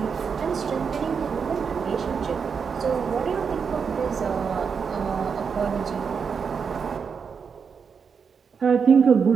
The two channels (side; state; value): left; quieter; 6.1 dB